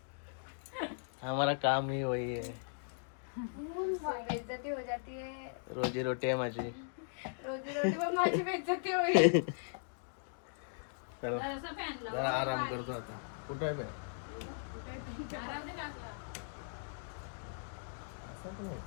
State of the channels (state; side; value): silent; right; digital silence